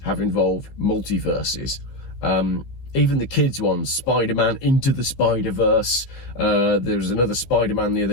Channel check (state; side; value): late; right; 15 ms